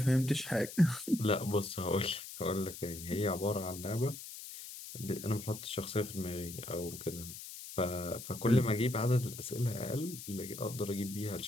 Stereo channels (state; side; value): noise; left; hiss, 11 dB below the sound